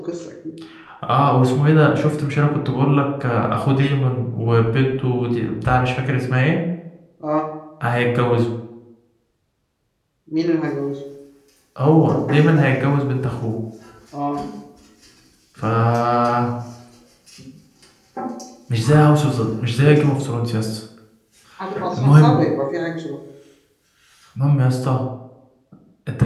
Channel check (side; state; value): both; identical; correlation 1.00